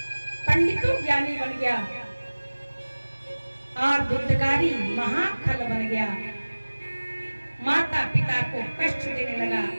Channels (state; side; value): inverted; both; correlation -1.00